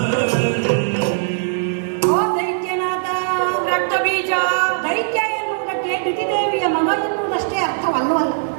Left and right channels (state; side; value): silent; left; digital silence